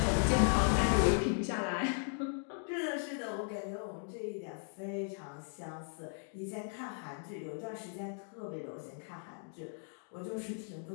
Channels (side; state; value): right; silent; 53 dB below the other